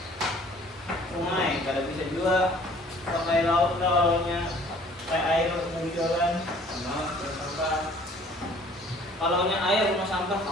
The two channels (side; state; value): both; normal; correlation 0.54